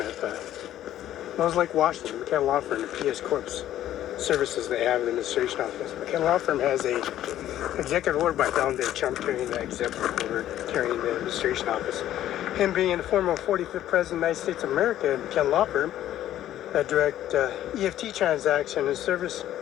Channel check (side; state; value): right; quieter; 12.5 dB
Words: Smells Like Washington, McKenna Law Firm and PS Corp's services they have in the administration office. McKenna Law Firm has a executive order by Donald J. Trump carrying the executive order carrying the administration office. Him being the former 45th President of the United States of America and McKenna Law Firm, that direct EFT transaction and service